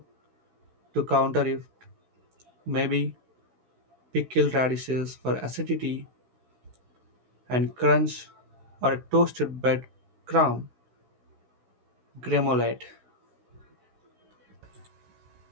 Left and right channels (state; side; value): late; left; 16 ms